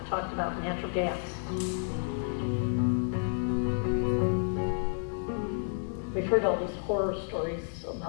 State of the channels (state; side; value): silent; right; digital silence